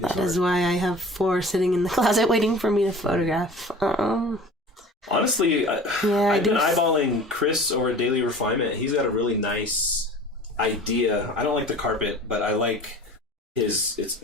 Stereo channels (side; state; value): both; normal; correlation 0.42